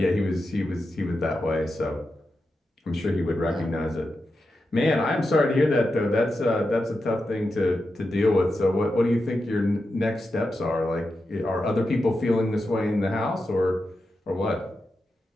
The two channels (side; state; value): both; normal; correlation 0.89